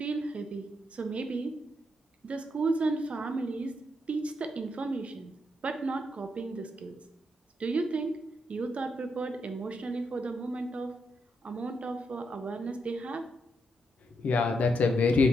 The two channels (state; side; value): normal; both; correlation 0.80